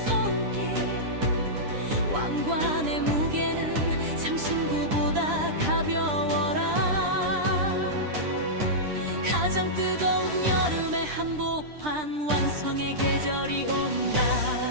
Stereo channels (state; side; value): late; left; 9.9 ms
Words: 손길. 왕관의 무게는 장신구보다 가벼워라. 가장 뜨거운 여름의 한복판, 완성의 계절이 온다.